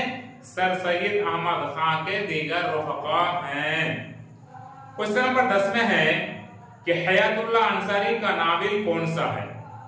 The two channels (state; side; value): identical; both; correlation 1.00